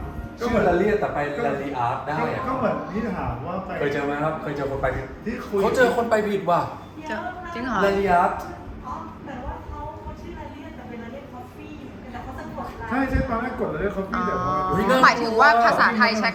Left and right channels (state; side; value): identical; both; correlation 1.00